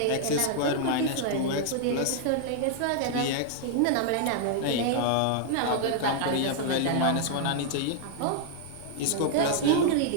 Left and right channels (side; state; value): both; different; correlation -0.01